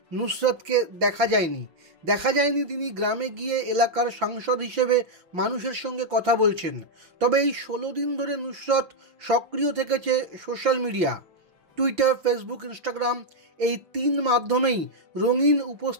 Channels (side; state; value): left; late; 5.9 ms